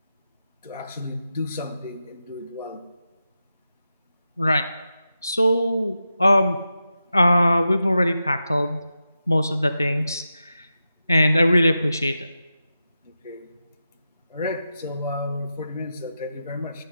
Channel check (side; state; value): both; inverted; correlation -0.90